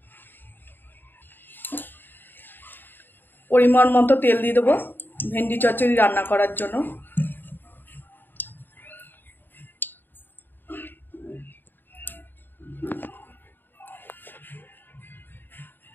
পরিমাণ মতো তেল দিয়ে দেবো ভেন্ডি চচ্চড়ি রান্না করার জন্য।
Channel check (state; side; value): late; right; 0.093 ms